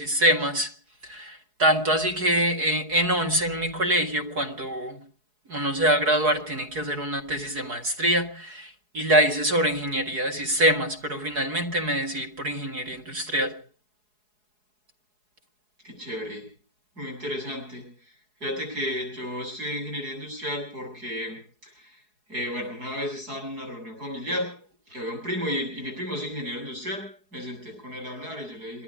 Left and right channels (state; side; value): late; left; 4.7 ms